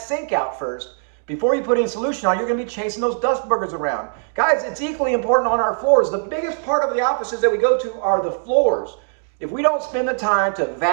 sink out first, before you put any solution on, you're going to be chasing those dust boogers around. Guys, it's equally important on our floors. The biggest part of the offices that we go to are the floors. If we don't spend the time to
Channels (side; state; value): left; silent; digital silence